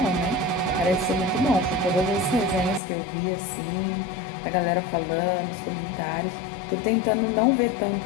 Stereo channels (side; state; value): right; drops out; at 2.8 s